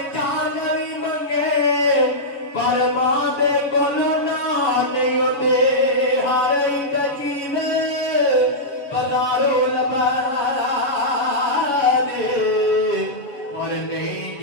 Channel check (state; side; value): late; right; 7.2 ms